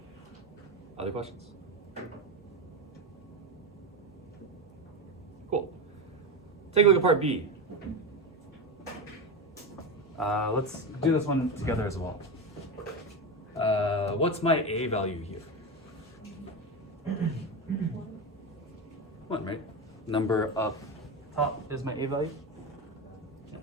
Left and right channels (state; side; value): normal; both; correlation 0.18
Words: Other questions? Cool. Take a look at part B. Let's do this one together as well. What's my A value here? 1, right? Number up top is my A value. Yeah.